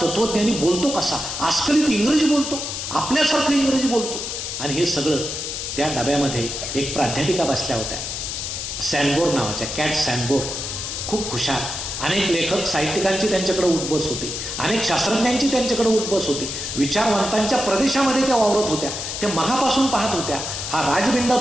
तत्वज्ञानी बोलतो कसा, आजकालित इंग्रजी बोलतो, आपल्यासारखं इंग्रजी बोलतो. आणि हे सगळं त्या डब्यामध्ये एक प्राध्यापिका बसल्या होत्या, सॅनबोर नावाच्या, कॅट सॅनबोर, खूप हुशार अनेक लेखक साहित्यिकांची त्यांच्याकडे उठबस होती, अनेक शास्त्रज्ञांची त्यांच्याकडे उठबस होती, विचारवंतांच्या प्रदेशामध्ये त्या वावरत होत्या, त्या मघापासून पाहत होत्या हा राजबिंडा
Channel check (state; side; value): noise; left; hiss, 5 dB below the sound